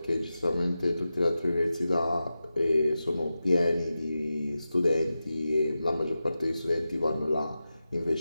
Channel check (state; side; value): inverted; both; correlation -0.92